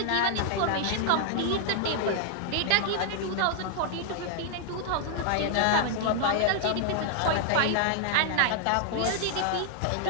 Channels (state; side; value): different; both; correlation 0.00